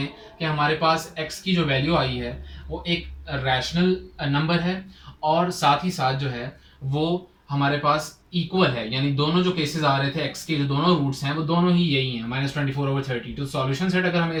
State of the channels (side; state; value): both; identical; correlation 1.00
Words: कि हमारे पास x की जो वैल्यू आई है वो एक रैशनल नंबर है, और साथ ही साथ जो है वो हमारे पास इक्वल है, यानी दोनों जो केसेस आ रहे थे x के जो दोनों रूट्स हैं वो दोनों ही यही हैं -24/32। तो सॉल्यूशन सेट अगर हमें